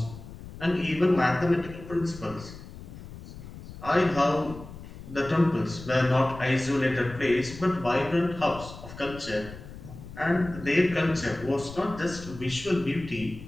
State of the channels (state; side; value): noise; left; rumble, 14 dB below the sound